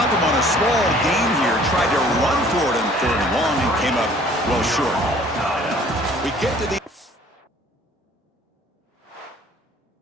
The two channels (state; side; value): normal; both; correlation 0.54